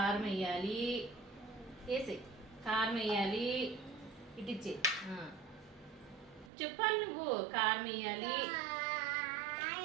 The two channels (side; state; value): left; drops out; at 6.5 s